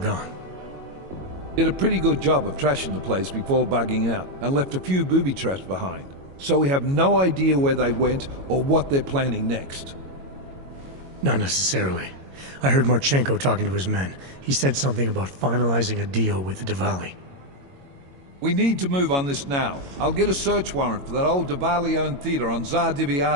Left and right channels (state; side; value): late; left; 22 ms